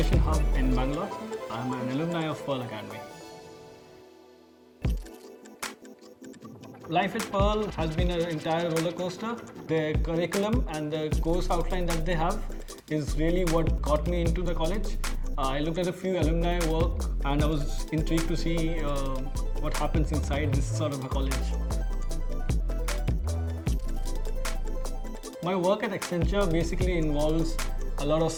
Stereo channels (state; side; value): identical; both; correlation 1.00